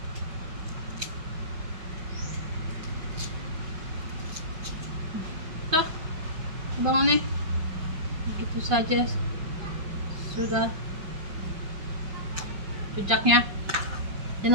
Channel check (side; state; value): left; late; 5.3 ms